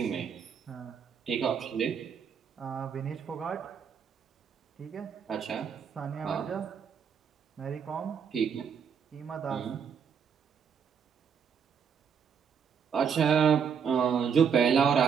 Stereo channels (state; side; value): quieter; left; 6.9 dB